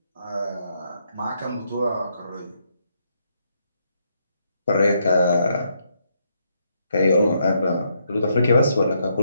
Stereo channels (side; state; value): both; inverted; correlation -0.76